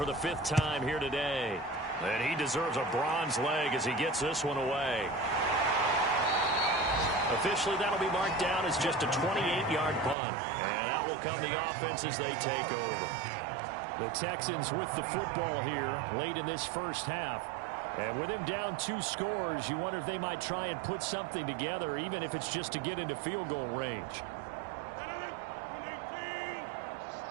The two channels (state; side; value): drops out; left; at 10.2 s